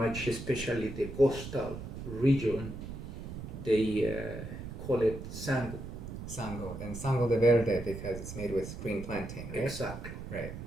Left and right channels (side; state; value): right; noise; rumble, 9 dB below the sound